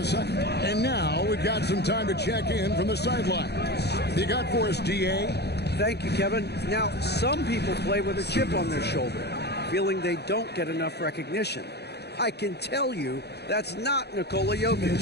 second. And now we've got some time to check in from the sidelines. You got for us, D.A.? Thank you, Kevin. Now, some people play with a chip on their shoulder, feeling they don't get enough recognition. I can tell you that's not Nikola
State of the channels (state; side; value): late; right; 0.48 ms